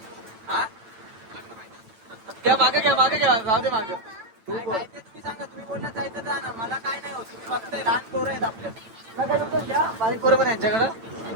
हा? मागे घ्या राहू दे मागे. काय ते तुम्ही सांगा. तुम्ही बोलला जायचं जा ना, मला काय नाही होत. तुम्ही बघताय लहान पोरं आहेत आपल्या. बारीक बरोबर यांच्याकडं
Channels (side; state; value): left; late; 8.9 ms